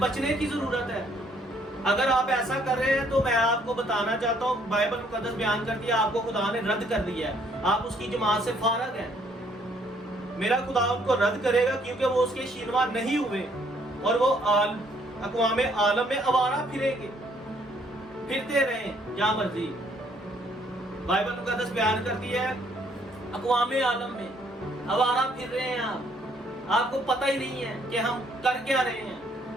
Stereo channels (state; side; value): normal; both; correlation 0.65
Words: کی ضرورت ہے۔ اگر آپ ایسا کر رہے ہیں تو میں آپ کو بتانا چاہتا ہوں، بائبل مقدس بیان کرتی ہے آپ کو خدا نے رد کر دیا ہے، آپ اس کی جماعت سے فارغ ہیں۔ میرا خدا ان کو رد کرے گا کیونکہ وہ اس کے شینوا نہیں ہوئے، اور وہ اقوام عالم میں آوارہ پھریں گے، پھرتے رہیں جہاں مرضی۔ بائبل مقدس بیان کرتی ہے اقوام عالم میں آوارہ پھر رہے ہیں آپ کو پتہ ہی نہیں ہے کہ ہم کر کیا رہے ہیں۔